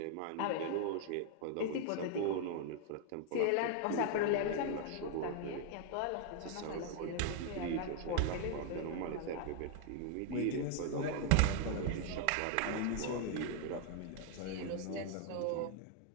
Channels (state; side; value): different; both; correlation 0.00